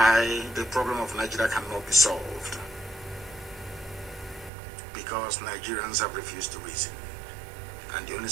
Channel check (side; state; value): left; drops out; at 4.5 s